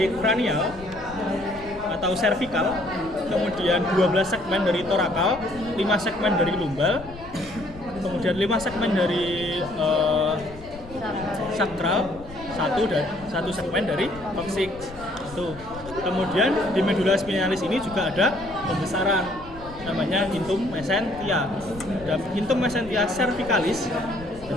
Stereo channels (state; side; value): noise; left; rumble, 17 dB below the sound